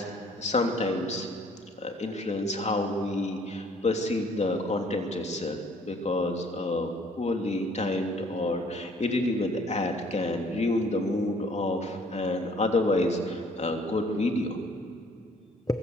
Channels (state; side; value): normal; both; correlation 0.58